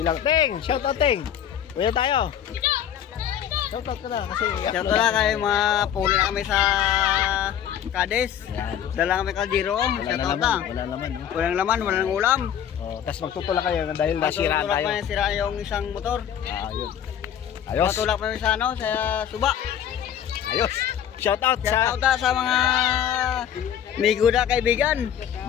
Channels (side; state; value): right; quieter; 9.6 dB